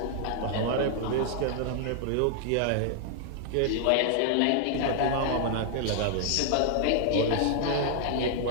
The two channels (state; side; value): different; both; correlation 0.00